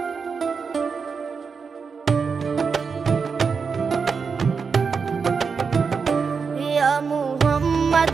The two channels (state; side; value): quieter; left; 5.5 dB